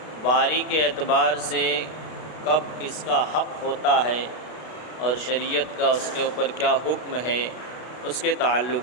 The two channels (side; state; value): right; late; 32 ms